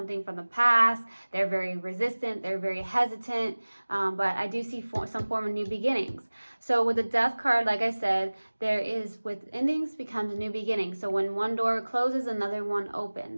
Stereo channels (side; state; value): both; inverted; correlation -1.00